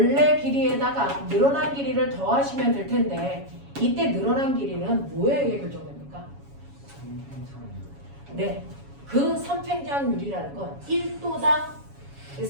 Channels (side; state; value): left; late; 7.2 ms